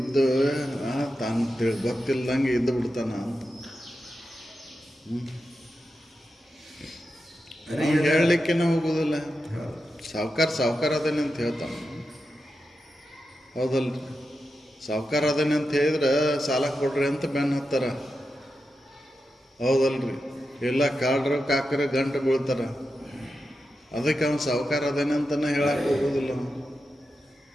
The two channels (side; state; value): both; normal; correlation 0.89